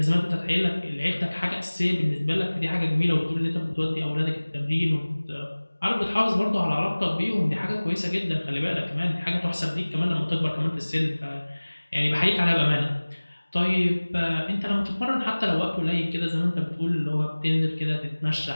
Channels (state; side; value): inverted; both; correlation -1.00